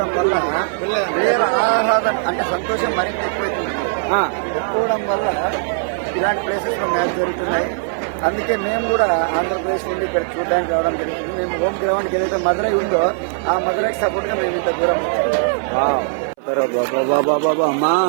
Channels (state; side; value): silent; left; 64 dB below the other